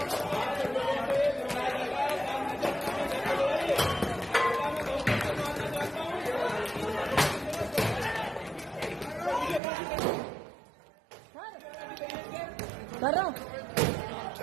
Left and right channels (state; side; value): drops out; left; at 9.6 s